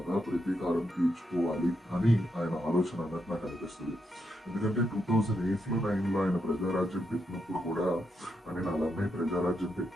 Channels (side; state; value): both; normal; correlation 0.82